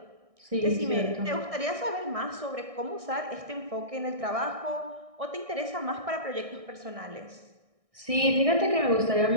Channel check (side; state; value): left; late; 1.6 ms